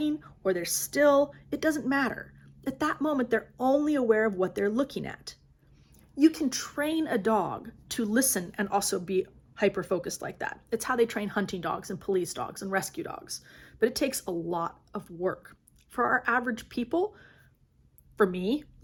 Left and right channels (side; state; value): both; identical; correlation 1.00